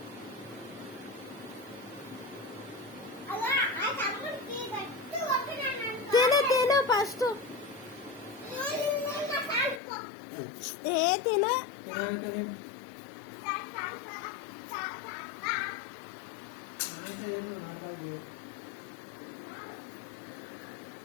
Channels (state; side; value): drops out; right; at 9.8 s